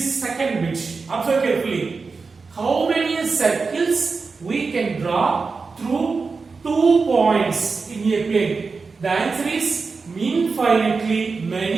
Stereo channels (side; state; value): left; quieter; 4.5 dB